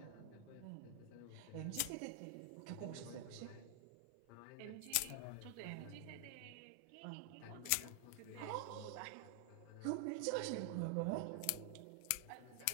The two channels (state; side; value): different; both; correlation 0.00